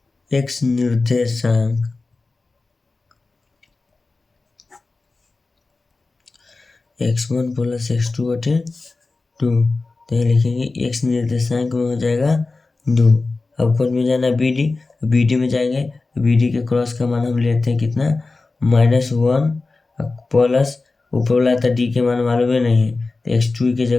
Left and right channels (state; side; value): quieter; right; 3.6 dB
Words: x निर्देशांक x1 प्लस x2 बटे 2। तो यहाँ लिखेंगे x निर्देशांक में हो जाएगा 2। अब कौन में जाना, BD में जाएंगे। BD के क्रॉस का मान हम लेते हैं कितना, -1 प्लस ऊपर वाला था d के मान मालूम है नहीं है, तो x2 की